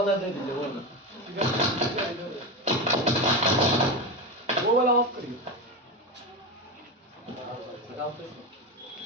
दे दीजिए, वो वाला ऑफ करिए।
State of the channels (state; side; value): normal; both; correlation 0.18